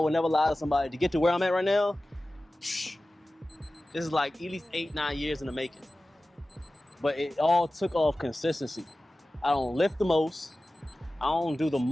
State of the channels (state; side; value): normal; both; correlation 0.96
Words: never lie to somebody. To get to where I'm at right now, this is like at least 8-9 years in the making. But it all took off consistency. I don't lift the most. I don't do the